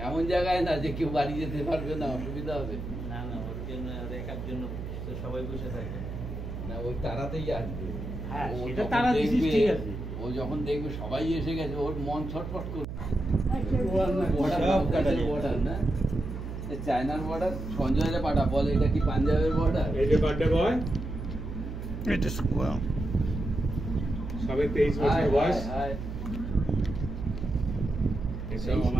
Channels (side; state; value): right; noise; hum, 7 dB below the sound